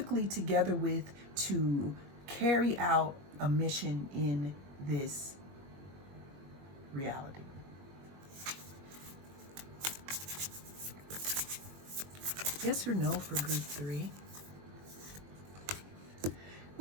together with to carry out a mission in this reality. Yes or no for group 3?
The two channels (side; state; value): left; late; 21 ms